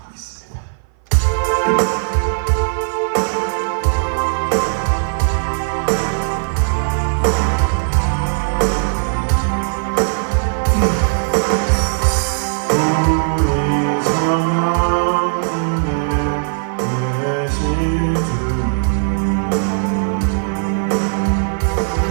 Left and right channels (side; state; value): left; silent; 56 dB below the other